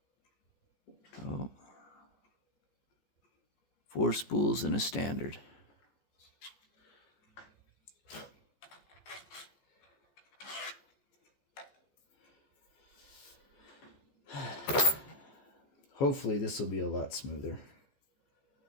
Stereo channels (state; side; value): late; right; 14 ms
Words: Oh. 4 spools and a standard. Hopefully this will be a lot smoother.